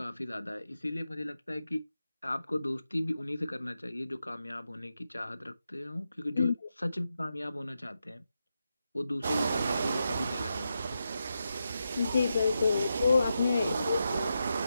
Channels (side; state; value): both; inverted; correlation -0.87